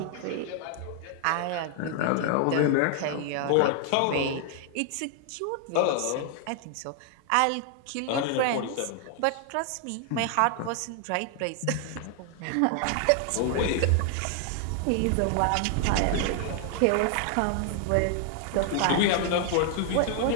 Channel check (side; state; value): both; different; correlation 0.00